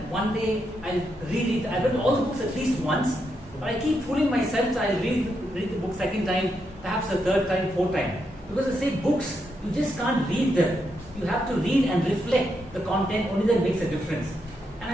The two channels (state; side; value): normal; both; correlation 0.81